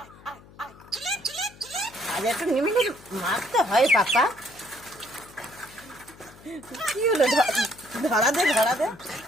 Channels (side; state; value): left; noise; hum, 23 dB below the sound